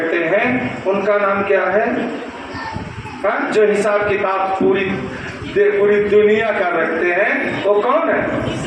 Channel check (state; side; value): identical; both; correlation 1.00